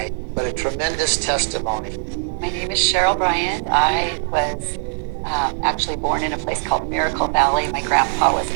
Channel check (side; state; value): left; silent; digital silence